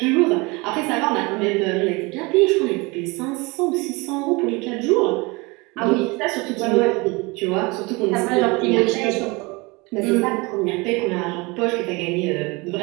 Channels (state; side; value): quieter; left; 25.8 dB